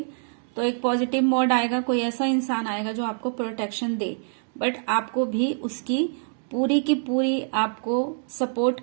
तो एक पॉजिटिव मोड आएगा, कोई ऐसा इंसान आएगा जो आपको प्रोटेक्शन दे, बट आपको भी उसकी पूरी की पूरी आपको सपोर्ट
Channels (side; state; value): left; silent; digital silence